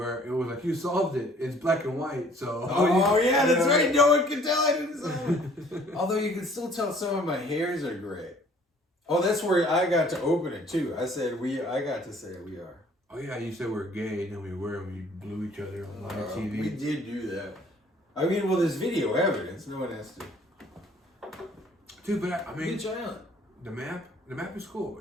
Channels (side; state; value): both; normal; correlation 0.56